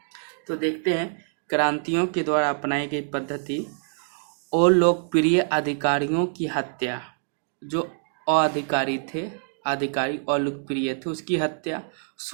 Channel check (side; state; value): left; silent; 61 dB below the other